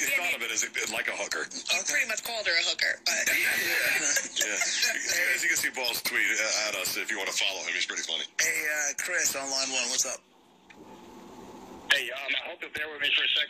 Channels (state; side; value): identical; both; correlation 1.00